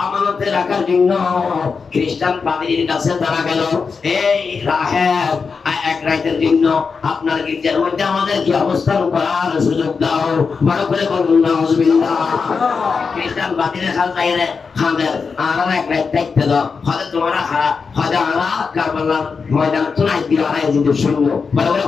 আমানতে রাখার জন্য খ্রিস্টান পাদ্রীর কাছে তারা গেল, এই রাহেব এক রাতের জন্য আপনার গির্জার মধ্যে আমাদের কি অবস্থান করার সুযোগ দাও। বড় করে বলুন নাউজুবিল্লাহ। খ্রিস্টান পাদ্রীর হাল তাইরে খাদের আর এক রাত থাকতে দাও, হয়তো তোমরা হয়তো আমরা কারবালার ময়দান তো নাই দিও আর যদি শূন্য। বড় করে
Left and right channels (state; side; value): quieter; right; 5.2 dB